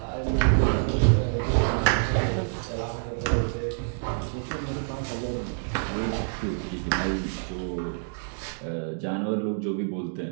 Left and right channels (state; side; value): silent; left; digital silence